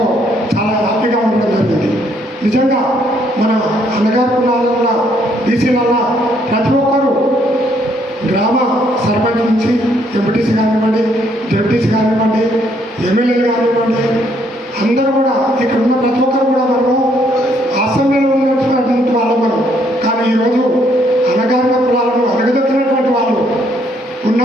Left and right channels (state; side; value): normal; both; correlation 0.69